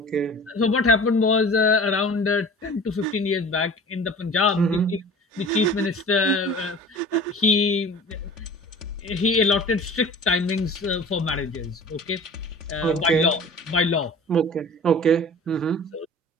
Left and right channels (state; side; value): normal; both; correlation 0.42